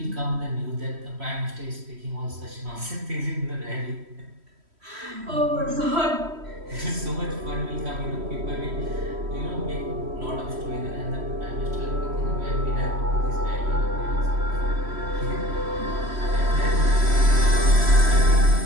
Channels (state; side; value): late; left; 3.1 ms